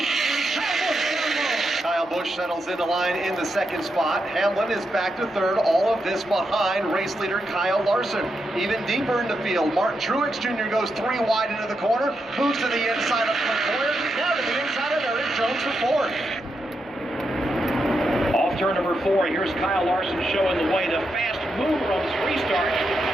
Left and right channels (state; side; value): normal; both; correlation 0.84